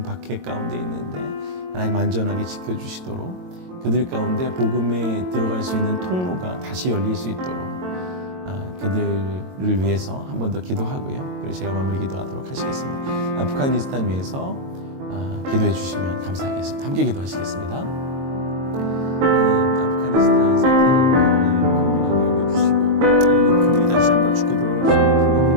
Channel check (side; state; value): left; late; 22 ms